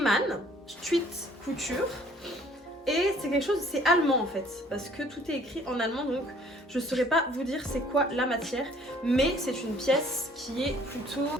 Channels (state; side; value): normal; both; correlation 0.57